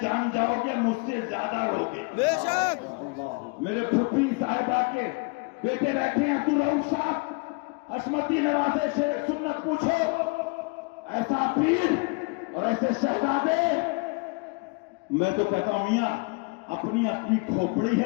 جان جاؤ گے مجھ سے زیادہ روگے. میرے پھپھی صاحبہ کے بیٹے بیٹھے ہیں عبدالرؤف صاحب، عصمتی نوازے سے سنت پوچھو. ایسا پیر اور ایسے شہزادے. میں تو کہتا ہوں میاں اپنی اپنی کھوپڑی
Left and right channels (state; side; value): quieter; right; 30.1 dB